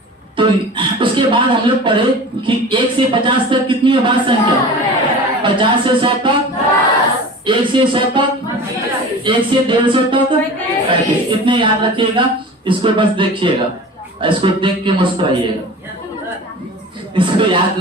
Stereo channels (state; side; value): normal; both; correlation 0.37